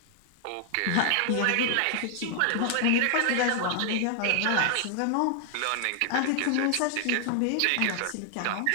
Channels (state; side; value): different; both; correlation 0.00